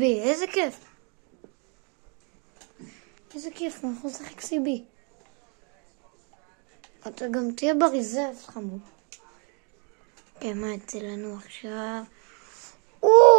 איזה כיף. איזה כיף, הוא יכול לשחק CB. אתה גם תהיה בריזרב, חמוד. כן, מה יצא לנו עכשיו?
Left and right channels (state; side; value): quieter; left; 35.6 dB